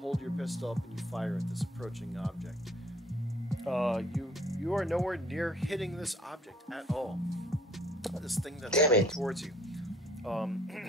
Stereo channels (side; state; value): both; normal; correlation 0.59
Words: your pistol up and you fire at this approaching object. You are nowhere near hitting this object at all. This thing that's coming towards you.